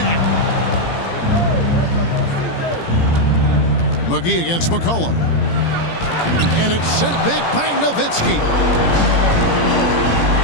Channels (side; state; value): right; late; 17 ms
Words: McGee against McCollum. And it's sent back by Nowitzki.